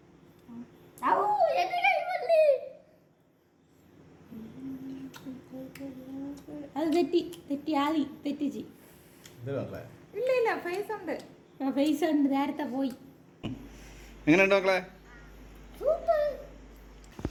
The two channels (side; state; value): both; identical; correlation 1.00